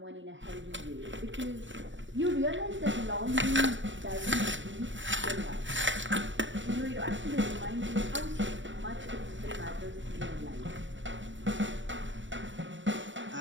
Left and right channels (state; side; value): late; left; 0.55 ms